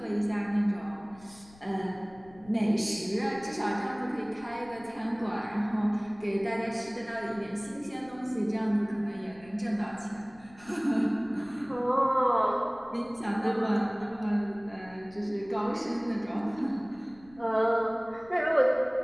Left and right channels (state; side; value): noise; left; rumble, 24 dB below the sound